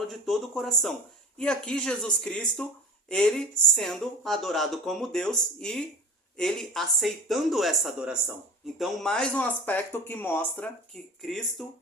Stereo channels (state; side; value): normal; both; correlation 0.36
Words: de todo o coração. E aqui Jesus Cristo, ele sendo adorado como Deus e ele aceitando essa adoração. Então, mais um aspecto que mostra que Cristo